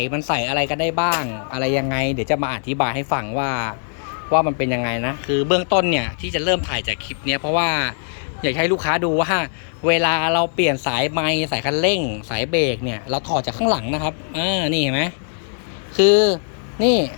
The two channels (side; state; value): right; silent; 62 dB below the other